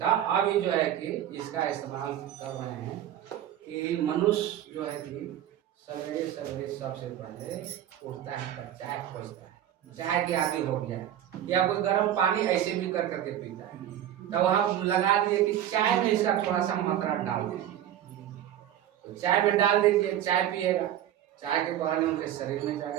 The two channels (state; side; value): quieter; left; 11.3 dB